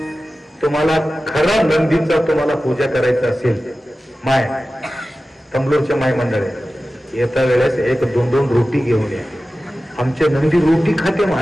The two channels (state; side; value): normal; both; correlation 0.95